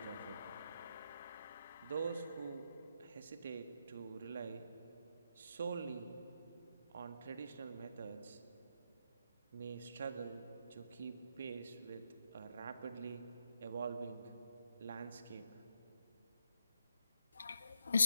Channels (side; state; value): both; inverted; correlation -0.81